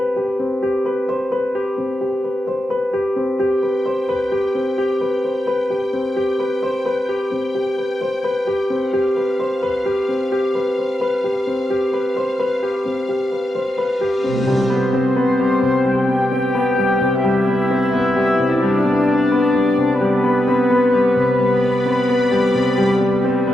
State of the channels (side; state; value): both; normal; correlation 0.87